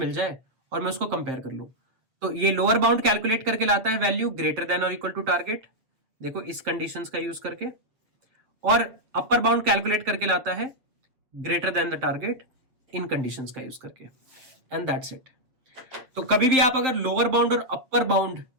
जाए और मैं उसको कंपेयर कर लूं। तो ये लोअर बाउंड कैलकुलेट करके लाता है वैल्यू ग्रेटर देन और इक्वल टू टारगेट, देखो इस कंडीशंस का यूज करके। और अपर बाउंड कैलकुलेट करके लाता है greater than the target in conditions का यूज करके, एंड दैट्स इट। तो कभी भी आप अगर लोअर बाउंड और अपर बाउंड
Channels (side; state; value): left; late; 7.7 ms